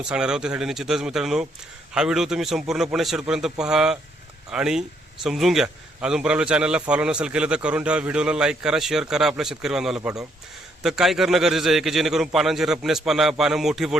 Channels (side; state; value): both; normal; correlation 0.71